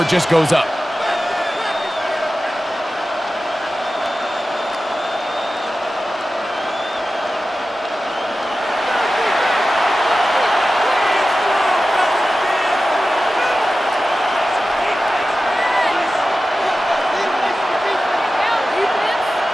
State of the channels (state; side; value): normal; both; correlation 0.94